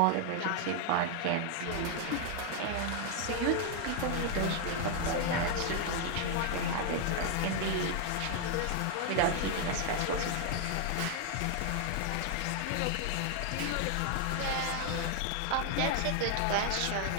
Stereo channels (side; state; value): both; different; correlation 0.00